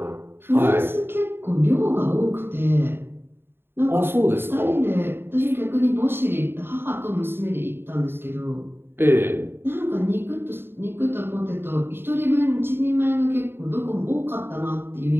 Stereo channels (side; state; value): left; late; 0.11 ms